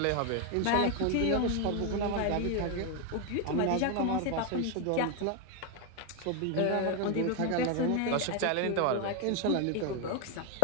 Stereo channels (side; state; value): both; different; correlation 0.01